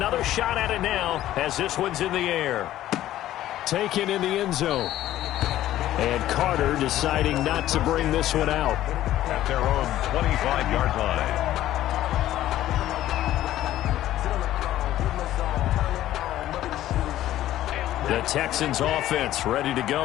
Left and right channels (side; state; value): right; quieter; 13.6 dB